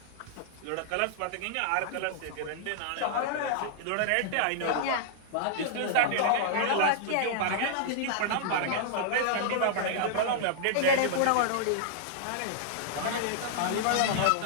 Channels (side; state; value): both; different; correlation -0.01